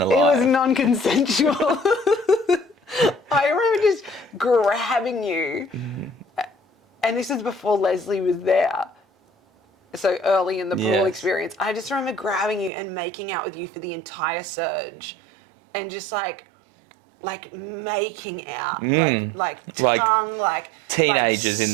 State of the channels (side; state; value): left; drops out; at 12.7 s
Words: alive. It was non-consensual. I remember just grabbing you, and this is before Leslie was there. So early in the pool experience, I just remember grabbing you and making out with you for the entire surge, and just like making out, like tongue, like teenagers,